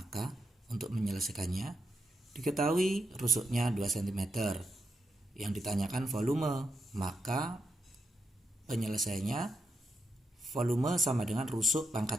untuk menyelesaikannya, diketahui rusuknya 2 cm. Yang ditanyakan volume, maka penyelesaiannya volume sama dengan rusuk pangkat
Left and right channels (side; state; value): both; normal; correlation 0.84